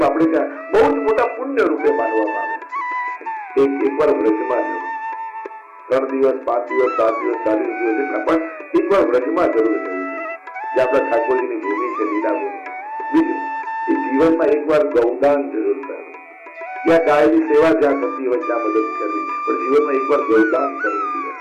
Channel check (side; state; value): both; identical; correlation 1.00